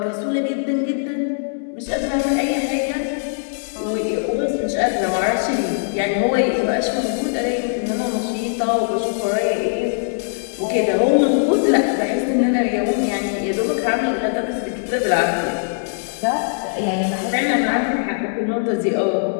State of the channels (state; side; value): silent; right; digital silence